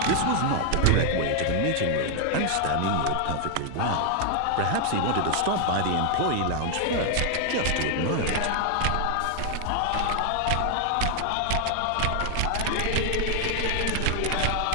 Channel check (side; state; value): both; different; correlation 0.00